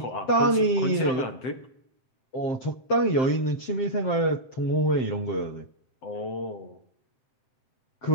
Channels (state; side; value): late; right; 7.8 ms